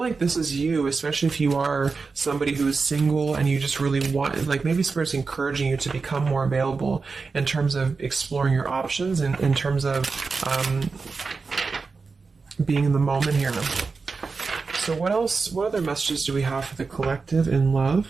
this is you, especially if you are somebody who is single and you just really want, like maybe Spirit's encouraging you to become more available in terms of exploring your options and in terms of being in the moment here. So what else, what other messages do we have for the collective in love?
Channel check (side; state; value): left; quieter; 4.5 dB